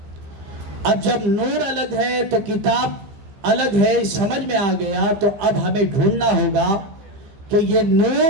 اب جب نور الگ ہے تو کتاب الگ ہے، سمجھ میں آ گیا، تو اب ہمیں ڈھونڈنا ہوگا کہ یہ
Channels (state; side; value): late; left; 15 ms